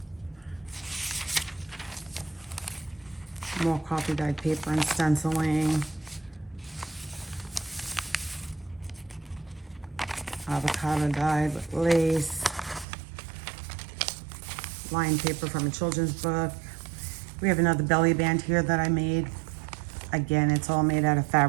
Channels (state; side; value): drops out; left; at 12.9 s